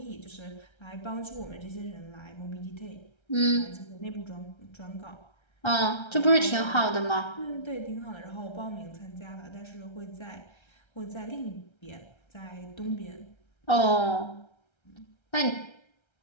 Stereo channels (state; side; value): late; right; 1.3 ms